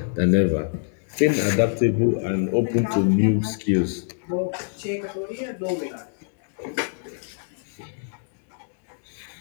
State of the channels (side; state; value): right; silent; digital silence